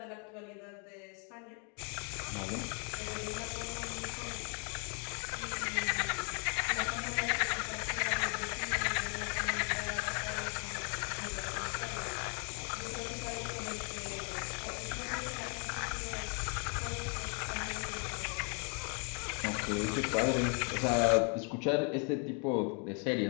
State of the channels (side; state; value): right; quieter; 37.6 dB